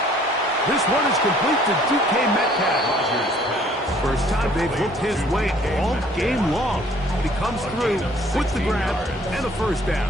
This one is complete to DK Metcalf. First time they've looked his way all game long. He comes through with the grab and a first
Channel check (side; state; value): both; normal; correlation 0.58